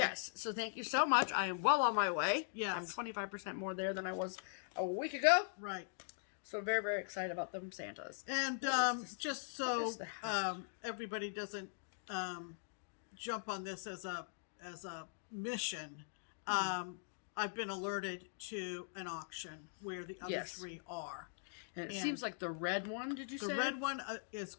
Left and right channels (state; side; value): silent; right; digital silence